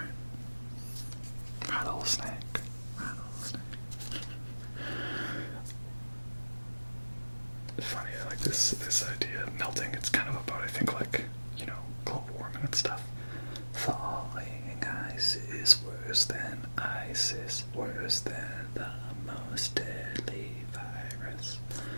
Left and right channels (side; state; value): both; inverted; correlation -1.00